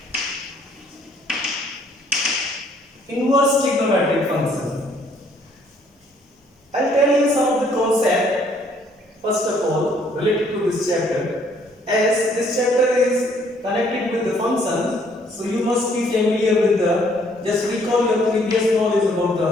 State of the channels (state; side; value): normal; both; correlation 0.64